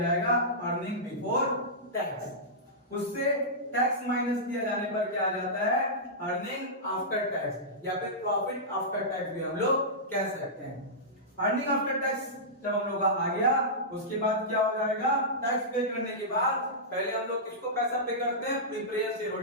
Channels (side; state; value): both; normal; correlation -0.15